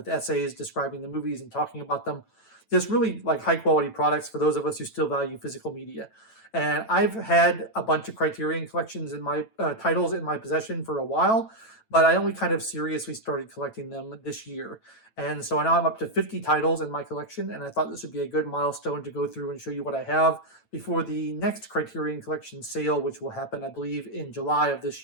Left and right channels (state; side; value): late; right; 9.1 ms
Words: essays describing the movies and talking about them. Just really like high-quality products for those of us who still value physical media. And I've had a bunch of Criterion collections in my titles in my possession for a while, but I only kind of seriously started collecting them this year. And so now I'm up to 50 titles in my collection, and I thought this would be a good milestone to go through and show you what I have before the next Criterion Collection sale, which will happen, I believe, in July of this